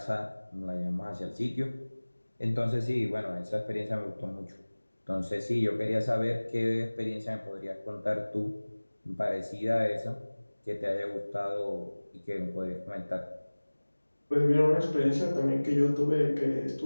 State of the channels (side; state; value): both; inverted; correlation -1.00